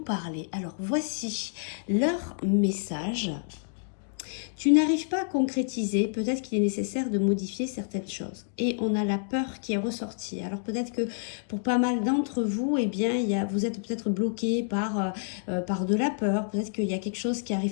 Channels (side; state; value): right; silent; digital silence